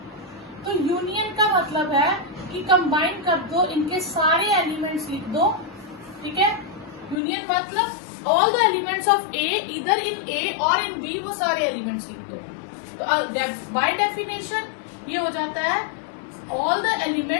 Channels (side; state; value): right; drops out; at 7.2 s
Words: तो यूनियन का मतलब है कि कंबाइन कर दो, इनके सारे एलिमेंट्स लिख दो। ठीक है, यूनियन मतलब ऑल द एलिमेंट्स ऑफ ए, इधर इन ए और इन बी, वो सारे एलिमेंट्स लिख दो। तो बाय डेफिनेशन ये हो जाता है ऑल द